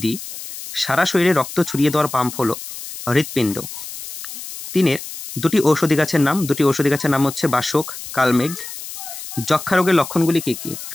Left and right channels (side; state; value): left; noise; hiss, 11 dB below the sound